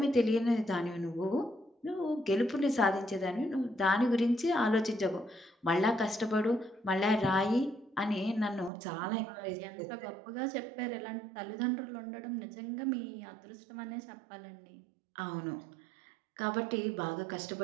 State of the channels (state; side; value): drops out; left; at 8.7 s